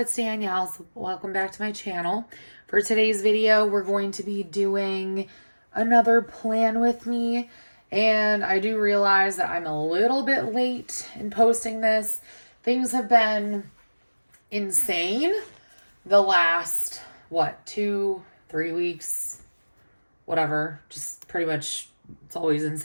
It's Danielle. So welcome back to my channel. For today's video, we're going to be doing another plan with me. And I do realize that I'm a little bit late in posting this. Things have been insane the last, 2-3 weeks, whatever. Just pretty much, it's always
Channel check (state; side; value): inverted; both; correlation -1.00